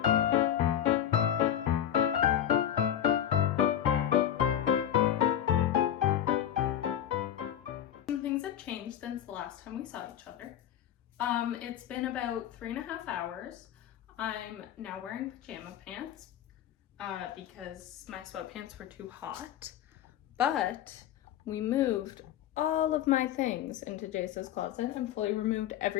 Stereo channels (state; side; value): quieter; right; 10.6 dB